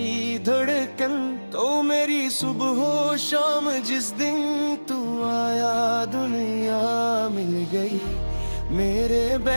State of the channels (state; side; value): inverted; both; correlation -1.00